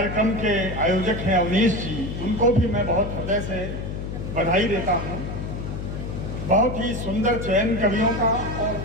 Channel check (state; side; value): noise; left; hum, 6 dB below the sound